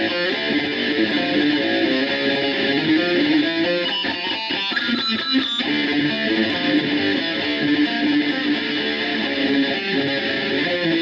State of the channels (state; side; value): identical; both; correlation 1.00